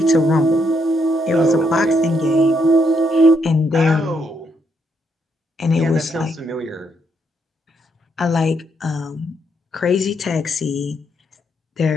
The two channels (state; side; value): normal; both; correlation 0.76